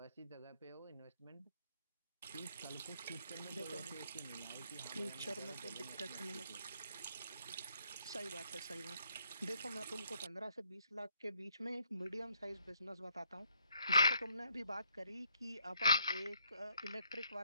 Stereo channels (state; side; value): inverted; both; correlation -0.70